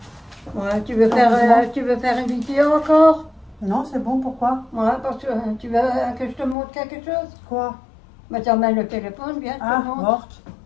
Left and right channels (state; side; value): drops out; right; at 6.6 s